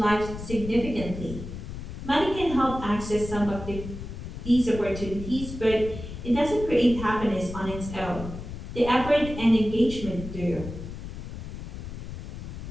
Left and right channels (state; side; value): noise; left; rumble, 9 dB below the sound